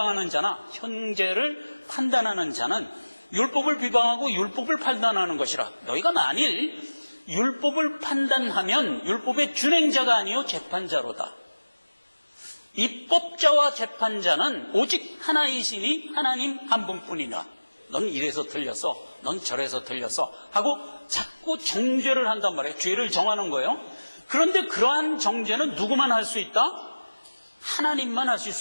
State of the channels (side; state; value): both; inverted; correlation -1.00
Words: 자나 형제를 판단하는 자는 율법을 비방하고 율법을 판단하는 것이라. 너희가 만일 율법을 판단하면 율법의 준행자가 아니요 재판자로다. 입법자와 재판자는 오직 하나이시니 하나님 한 분뿐이라. 넌 이래서 틀렸어, 넌 저래서 틀렸어 하고 자꾸 정죄를 한단 말이에요. 죄를 정하는 거예요. 그런데 그러한 정죄는 누구만 할 수 있다? 하나님만 하실